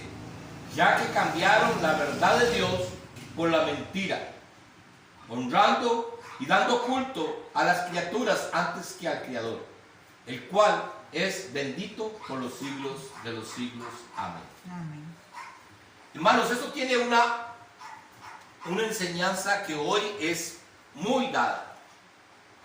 ya que cambiaron la verdad de Dios por la mentira, honrando y dando culto a las criaturas antes que al Creador, el cual es bendito por los siglos de los siglos. Amén. Amén. Hermanos, esto tiene una enseñanza que hoy es muy dada.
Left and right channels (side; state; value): both; identical; correlation 1.00